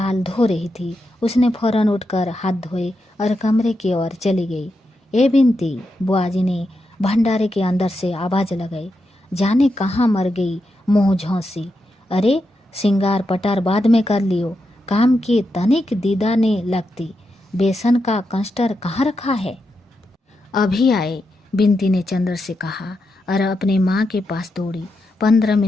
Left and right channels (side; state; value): both; normal; correlation 0.86